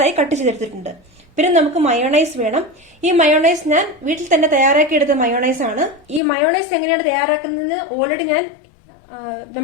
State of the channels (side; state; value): right; drops out; at 6.2 s